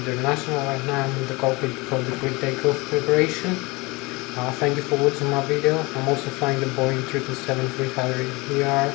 International. Right now I'm in the cockpit for the pre-takeoff preparation. Thank you for watching my video. I'm also flying the Boeing 777-300ER,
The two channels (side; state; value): right; quieter; 24.7 dB